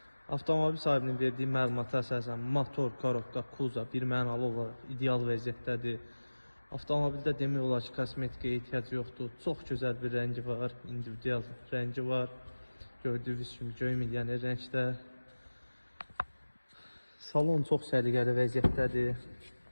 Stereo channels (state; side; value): inverted; both; correlation -1.00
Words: Avtomobil sahibinin verdiyi məlumata əsasən motor, korobka, Kuza bir mənalı olaraq ideal vəziyyətdədir. Avtomobildə demək olar ki, kosmetikaya ehtiyac yoxdur. Çox gözəl bir rəngi var, individual rəngi var. Gördüyünüz kimi göy milyoner rəngdə. Salon çox səliqəli vəziyyətdədir.